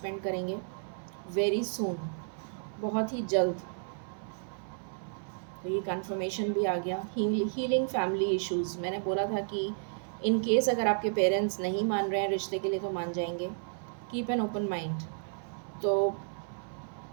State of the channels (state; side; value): silent; left; 56 dB below the other